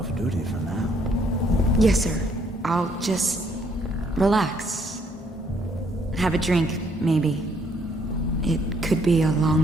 duty for now. Yes, sir. I'll just relax. Have a drink, maybe. It could be a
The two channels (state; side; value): normal; both; correlation 0.68